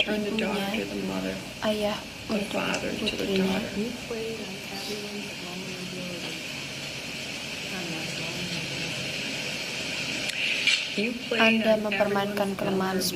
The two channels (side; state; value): both; identical; correlation 1.00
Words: ibunya, ayah untuk putrinya. Anda mempermainkan kelemahan